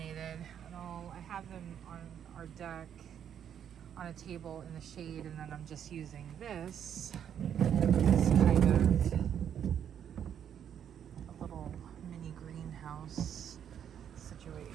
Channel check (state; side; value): quieter; left; 9.0 dB